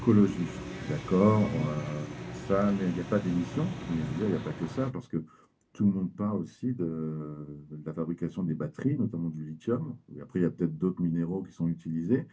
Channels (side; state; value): both; identical; correlation 1.00